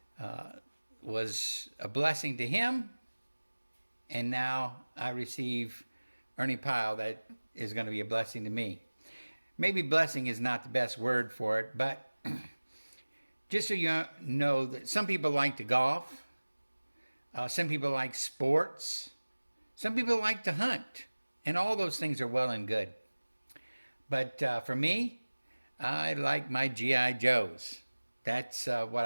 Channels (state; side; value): inverted; both; correlation -1.00